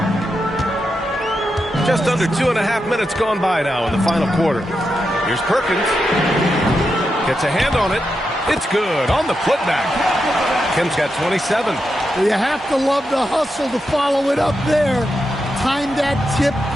Just under 2.5 minutes gone by now in the final quarter. Here's Perkins. Gets a hand on it. It's good on the putback. Kemp's got 27. You have to love the hustle to follow it up there. timed that tip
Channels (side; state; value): both; normal; correlation 0.86